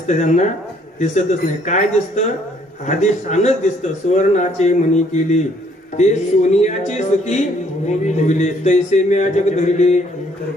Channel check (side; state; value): both; normal; correlation 0.64